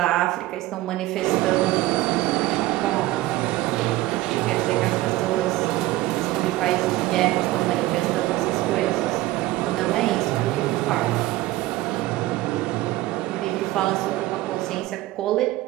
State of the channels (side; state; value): left; quieter; 17.2 dB